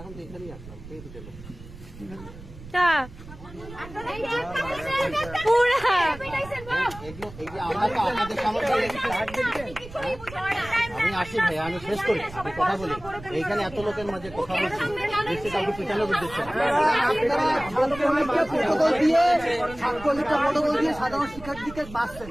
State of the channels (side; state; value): right; noise; rumble, 16 dB below the sound